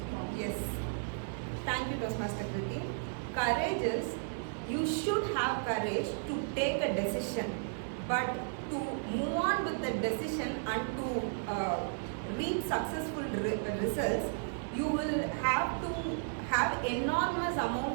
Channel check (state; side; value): silent; left; 55 dB below the other